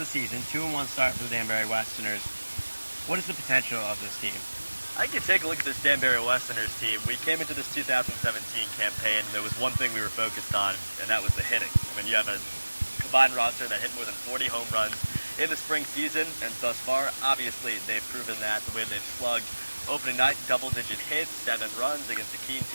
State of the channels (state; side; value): inverted; both; correlation -1.00